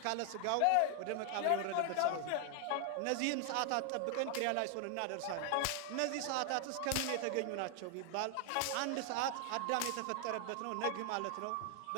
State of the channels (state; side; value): different; both; correlation 0.00